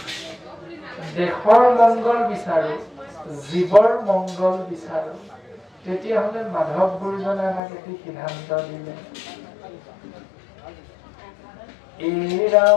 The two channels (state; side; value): drops out; right; at 7.6 s